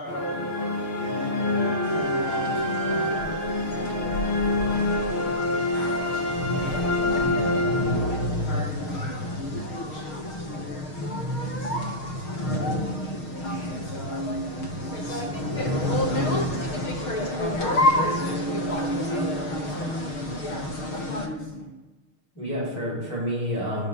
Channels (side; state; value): right; late; 6.5 ms